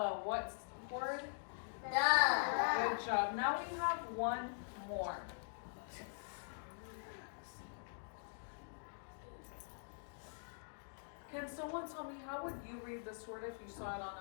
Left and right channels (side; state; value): right; silent; digital silence